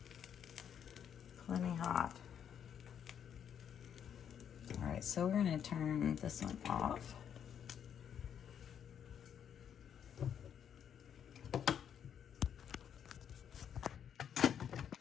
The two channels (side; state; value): right; quieter; 8.6 dB